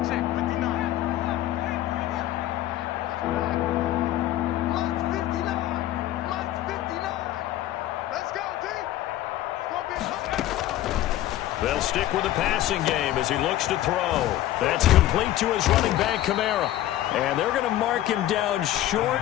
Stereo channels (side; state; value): right; quieter; 13.9 dB